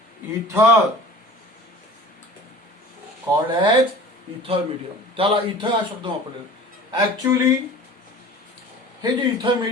इथर, कॉल्ड एज इथर मीडियम. त्याला इथर हा शब्द वापरलेला. ऍक्च्युअली हे जे इथर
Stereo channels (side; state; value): both; normal; correlation 0.42